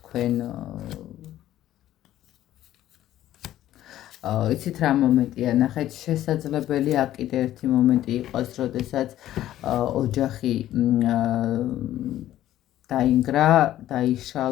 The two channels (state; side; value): quieter; right; 13.2 dB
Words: იცით რა მომენტია, ნახეთ, შესაძლებელია აქ კიდე ერთი მომენტი იყოს, როდესაც ოჯახი დაინგრა,